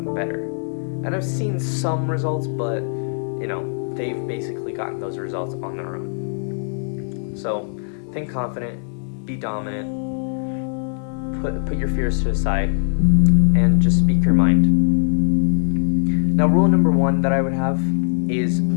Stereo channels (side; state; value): right; silent; 65 dB below the other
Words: better. And I've seen some results, but they've basically gotten those results on their own. So think confident, be dominant, put your fears to the side, and just speak your mind. Now, rule number 1 that I would have is